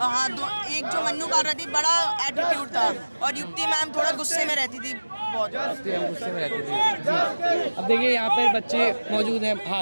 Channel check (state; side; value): inverted; both; correlation -1.00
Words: हाँ, एक जो मन्नू कर रही थी, बड़ा एटीट्यूड था, और युक्ति मैम थोड़ा गुस्से में रहती थी बहुत। गुस्से में रहते थे जी। अब देखिए यहाँ पर बच्चे मौजूद हैं।